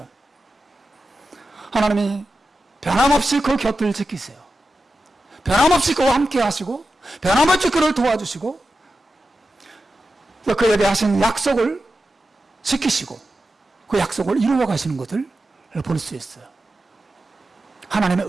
하나님이 변함없이 그 곁을 지키세요. 변함없이 그와 함께 하시고 변함없이 그를 도와주시고 그에게 하신 약속을 지키시고 그 약속을 이루어 가시는 것을 볼 수 있어요. 하나님의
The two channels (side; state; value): both; normal; correlation 0.92